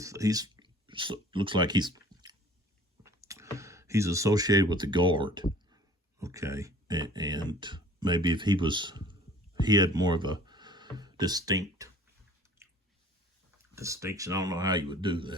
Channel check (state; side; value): normal; both; correlation 0.49